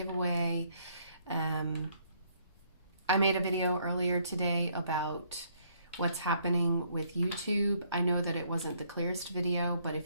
I made a video earlier today about what's happening with YouTube. I know that it wasn't the clearest video, but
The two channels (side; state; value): both; inverted; correlation -0.67